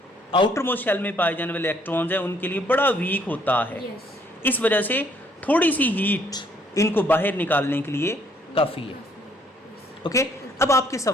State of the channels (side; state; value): both; normal; correlation 0.65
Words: आउटर मोस्ट शेल में पाए जाने वाले इलेक्ट्रॉन्स हैं उनके लिए बड़ा वीक होता है. Yes. इस वजह से थोड़ी सी हीट इनको बाहर निकालने के लिए काफ़ी है. ओके. अब आपके